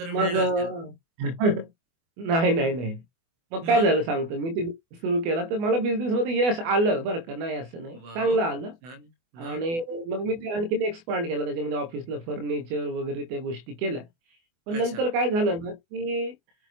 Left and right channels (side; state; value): left; late; 24 ms